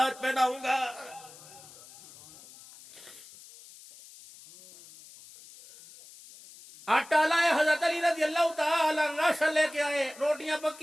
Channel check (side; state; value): left; noise; hiss, 20 dB below the sound